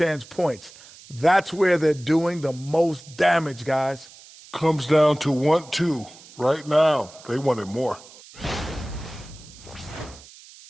points. That's where they're doing the most damage, guys. Comes down to 1-2. Right now, they wanted more.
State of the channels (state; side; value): noise; right; hiss, 21 dB below the sound